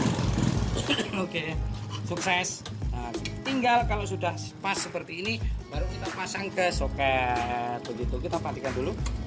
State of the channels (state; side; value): identical; both; correlation 1.00